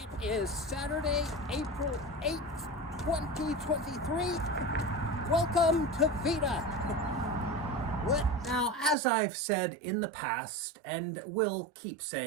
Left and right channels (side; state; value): left; drops out; at 9.0 s